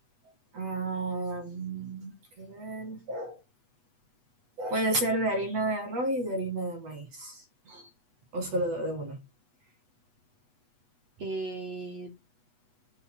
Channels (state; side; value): late; left; 8.2 ms